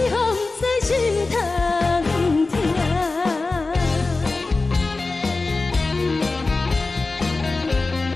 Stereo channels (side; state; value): right; quieter; 3.6 dB